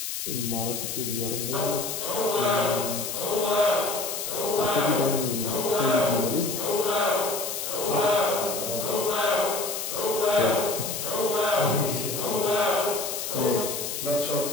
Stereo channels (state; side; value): noise; left; hiss, 4 dB below the sound